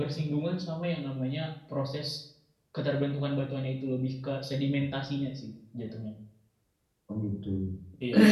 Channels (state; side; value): identical; both; correlation 1.00